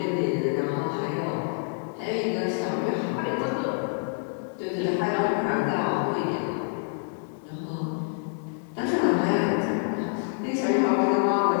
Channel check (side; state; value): right; silent; 60 dB below the other